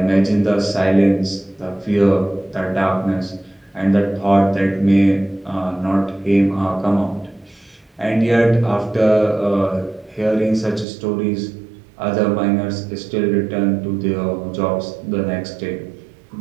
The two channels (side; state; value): left; drops out; at 10.9 s